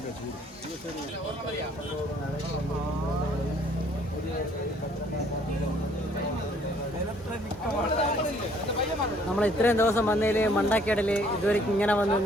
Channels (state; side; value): normal; both; correlation 0.61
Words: നമ്മൾ ഇത്രയും ദിവസം വന്നതിൽ മണ്ടക്കേടൽ ഇതുവരെ ഇങ്ങനെ